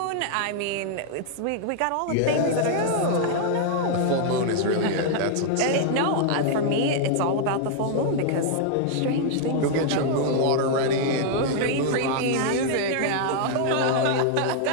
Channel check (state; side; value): different; both; correlation -0.01